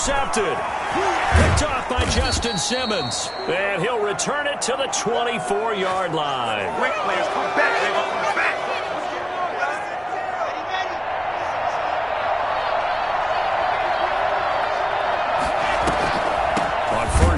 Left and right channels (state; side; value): identical; both; correlation 1.00